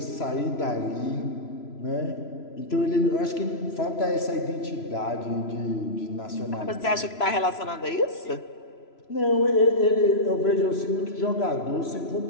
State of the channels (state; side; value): late; right; 3.0 ms